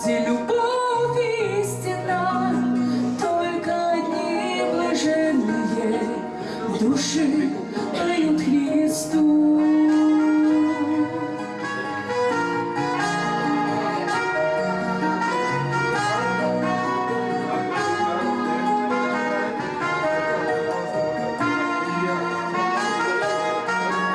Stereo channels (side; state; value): both; identical; correlation 1.00